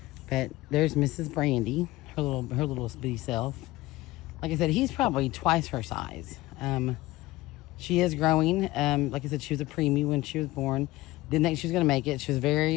But there's Mrs. Brandy, her little bitty self. Like I said, he's probably twice her size. She is growing. Like I said, she was a preemie when she was born. Didn't think she was going to make it. She was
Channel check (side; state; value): right; quieter; 18.6 dB